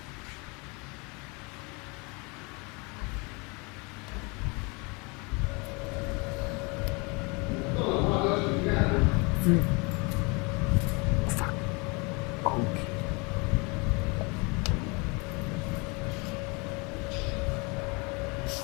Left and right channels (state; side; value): quieter; right; 29.4 dB